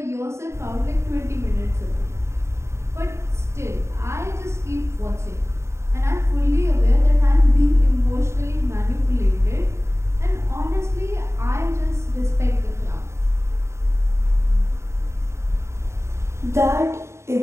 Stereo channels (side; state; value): left; late; 0.13 ms